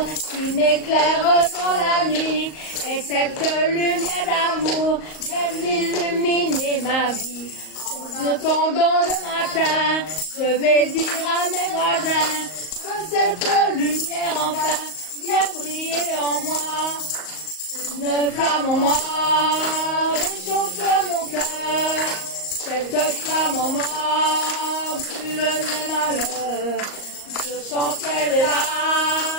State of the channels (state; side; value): late; right; 38 ms